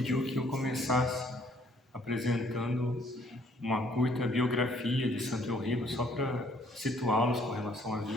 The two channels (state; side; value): normal; both; correlation 0.62